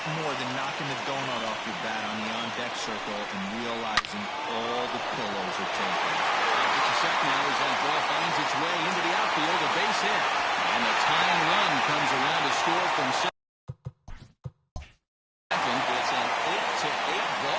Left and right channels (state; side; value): identical; both; correlation 1.00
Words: more than knocking the donut off your bat on the on-deck circle and realizing all the pillows are taken. It's a set now as that ball finds its way into the outfield, a base hit. And the tying run comes around to score from second. It's an 8-8